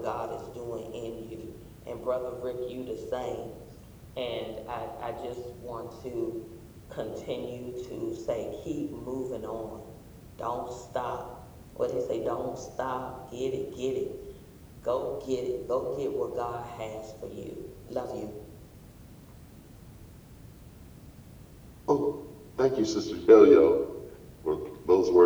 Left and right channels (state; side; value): identical; both; correlation 1.00